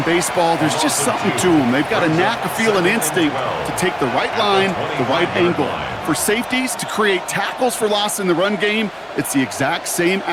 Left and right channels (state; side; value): identical; both; correlation 1.00